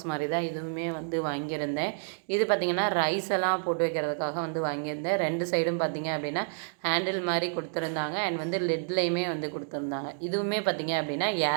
மாதிரி தான் இதுவுமே வந்து வாங்கியிருந்தேன். இது பார்த்திங்கன்னா ரைஸ் எல்லாம் போட்டு வைக்கிறதுக்காக வந்து வாங்கியிருந்தேன். 2 சைடும் பார்த்திங்க அப்படின்னா ஹேண்டில் மாதிரி கொடுத்துருந்தாங்க. அண்ட் வந்து லெட்லேயுமே வந்து கொடுத்துருந்தாங்க. இதுவுமே பார்த்திங்க அப்படின்னா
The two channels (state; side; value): silent; left; digital silence